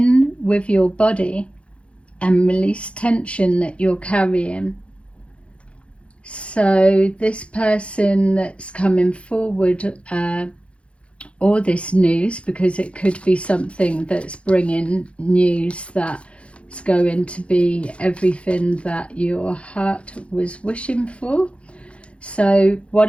with your body and release tension that you're carrying. So this person that's coming forward, or this news, because it could be something that's bringing news that's going to be everything that your heart was wishing for. So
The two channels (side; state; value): right; late; 0.060 ms